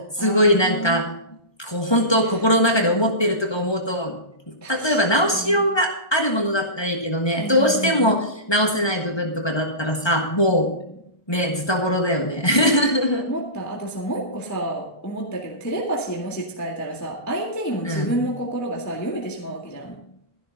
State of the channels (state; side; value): late; right; 1.2 ms